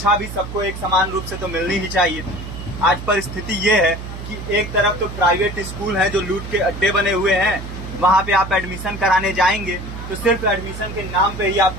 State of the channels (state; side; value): noise; right; hum, 9 dB below the sound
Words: भी सबको एक समान रूप से तो मिलनी ही चाहिए। आज परिस्थिति ये है कि एक तरफ तो प्राइवेट स्कूल हैं जो लूट के अड्डे बने हुए हैं, वहां पे आप एडमिशन कराने जाएंगे तो सिर्फ एडमिशन के नाम पे ही